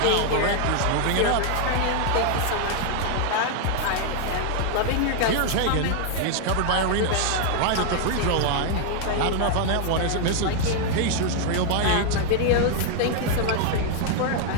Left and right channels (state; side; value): different; both; correlation 0.00